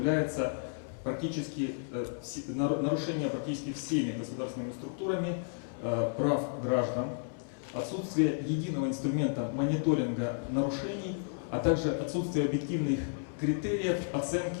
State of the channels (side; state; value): right; silent; 56 dB below the other